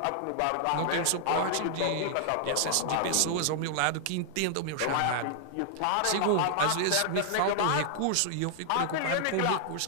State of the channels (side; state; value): both; different; correlation 0.00